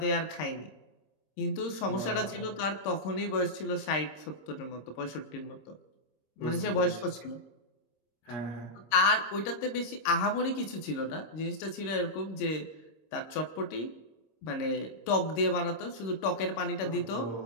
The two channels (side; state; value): right; late; 26 ms